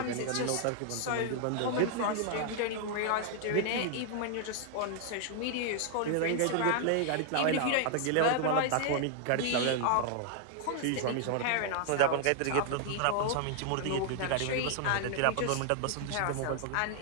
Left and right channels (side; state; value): both; different; correlation 0.00